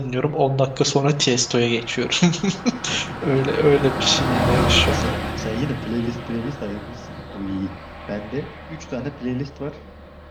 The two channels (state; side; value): identical; both; correlation 1.00